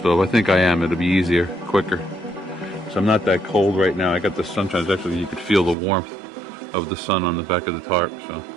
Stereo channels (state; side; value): drops out; left; at 5.8 s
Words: I think I am. It'll be easier, quicker. So I'm not that cold right now. I got the sunshine. Actually, you could feel the warmth of the sun on the back of the tarp. So